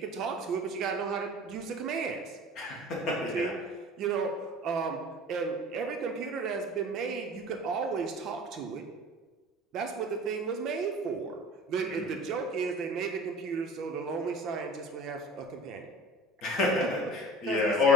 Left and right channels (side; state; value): both; normal; correlation 0.39